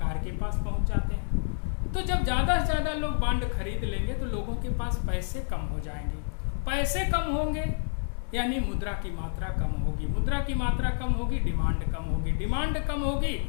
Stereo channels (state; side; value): silent; right; 58 dB below the other